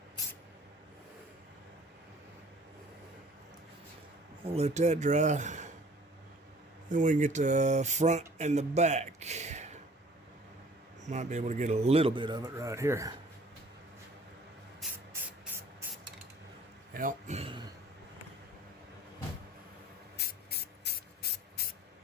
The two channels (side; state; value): both; normal; correlation 0.51